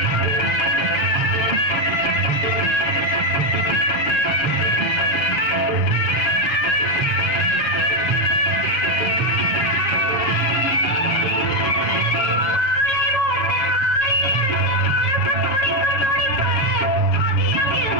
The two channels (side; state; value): right; late; 7.5 ms